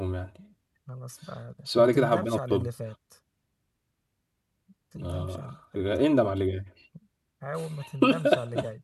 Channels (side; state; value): both; identical; correlation 1.00